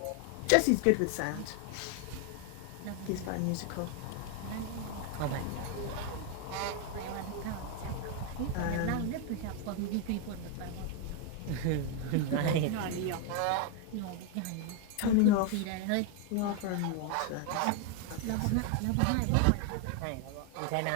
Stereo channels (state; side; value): different; both; correlation 0.01